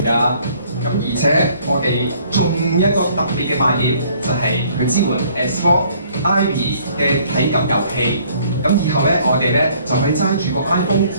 㗎。咁而且我哋仲一個特別嘅賣點就係佢支援 Xbox Ivy 嘅體感遊戲。咁以後咧，我哋咧就可以揸住個 iPhone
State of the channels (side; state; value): both; inverted; correlation -0.60